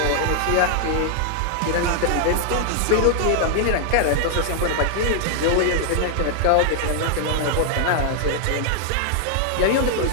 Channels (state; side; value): different; both; correlation 0.00